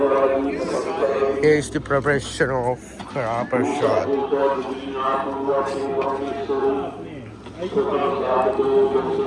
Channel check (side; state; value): both; identical; correlation 1.00